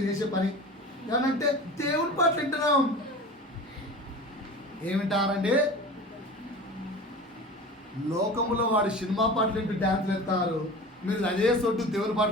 చేసే పని. ఏమంటే దేవుడి పాటలు వింటున్నాం. ఏమింటారండి? లోకములో వాడు సినిమా పాటలు వింటూ డ్యాన్స్లు వేస్తారు, మీరు అదే సొట్టు దేవుని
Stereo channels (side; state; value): both; normal; correlation 0.35